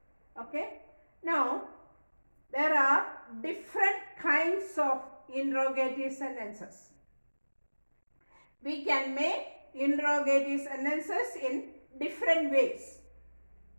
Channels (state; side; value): inverted; both; correlation -1.00